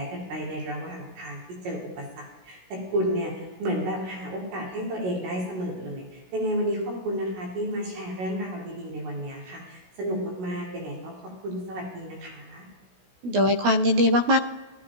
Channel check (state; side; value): late; left; 16 ms